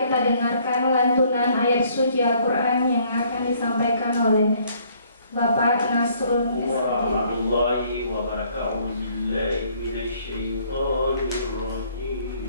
dengarkan lantunan ayat suci Al-Quran yang akan disampaikan oleh Bapak Nasrul warahmatullahi wabarakatuh.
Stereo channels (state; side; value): inverted; both; correlation -0.63